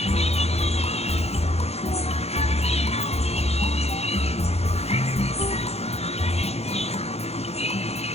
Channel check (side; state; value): right; late; 0.30 ms